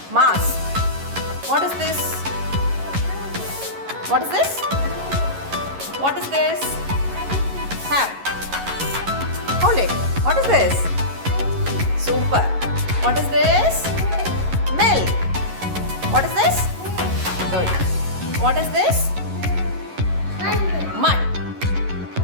Mask. What is this? What is this? What is this? Have. Hold it. What is this? Super. What is this? Milk. What is this? Good. What is this? Mud.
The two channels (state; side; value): late; left; 11 ms